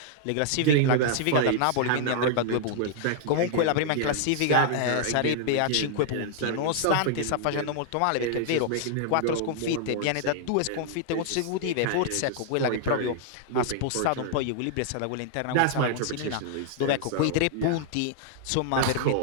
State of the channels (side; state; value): both; different; correlation -0.01